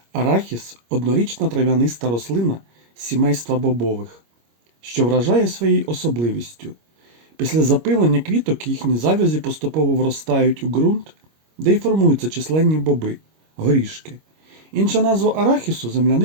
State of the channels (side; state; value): left; late; 25 ms